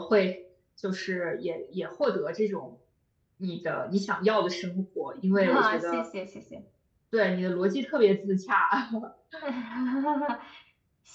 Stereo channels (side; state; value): both; identical; correlation 1.00